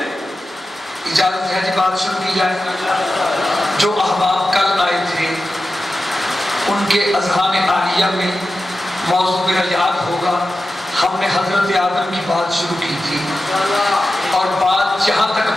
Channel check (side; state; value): both; normal; correlation 0.92